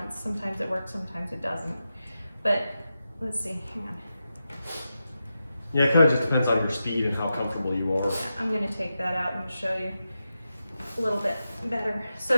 Sometimes it works, sometimes it doesn't. But let's see, hang on. Yeah, it kind of just depends on your speed and how comfortable you are. Yeah, I'm gonna take that out and show you a little bit better.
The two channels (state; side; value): inverted; both; correlation -0.89